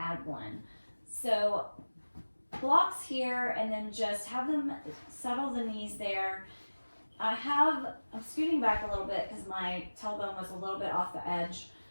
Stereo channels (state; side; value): inverted; both; correlation -1.00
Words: one. So blocks here, and then just have them settle the knees there. I'm scooting back a little bit because my tailbone was a little bit off the edge,